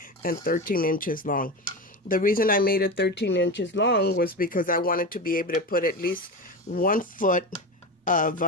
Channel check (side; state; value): both; normal; correlation 0.22